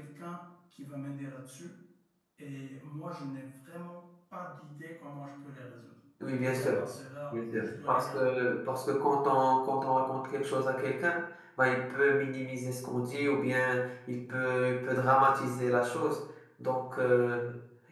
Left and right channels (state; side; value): identical; both; correlation 1.00